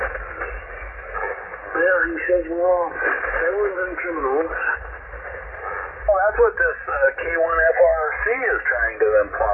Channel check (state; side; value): identical; both; correlation 1.00